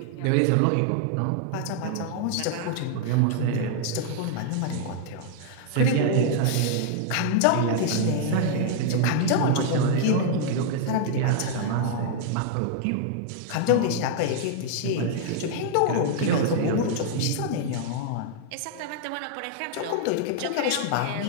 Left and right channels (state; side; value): different; both; correlation -0.01